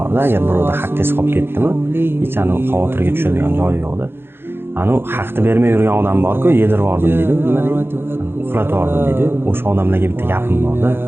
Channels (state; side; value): late; left; 0.11 ms